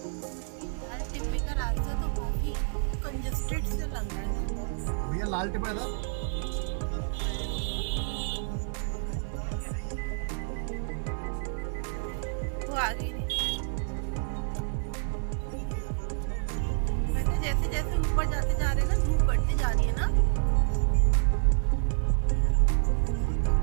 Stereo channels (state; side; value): silent; left; 59 dB below the other